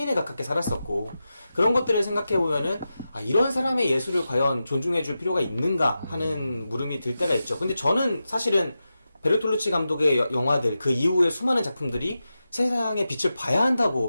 가깝게 살았었고, 그런 것들을 생각해 보면은 아, 이런 사람의 예술을 과연 존중해 줄 필요가 있는가 하는 물음이 들 때가 있죠. 근데 저는 사실은 베르톨루치 감독의 영화들, 그 이후의 수많은 작품들이 세상의 빛을 봐야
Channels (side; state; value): both; inverted; correlation -0.91